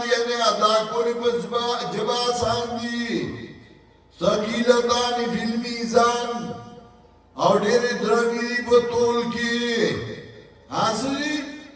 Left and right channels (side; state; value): both; identical; correlation 1.00